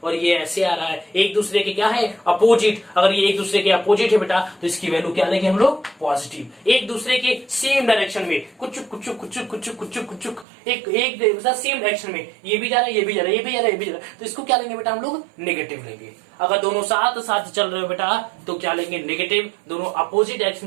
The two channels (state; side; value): drops out; left; at 10.5 s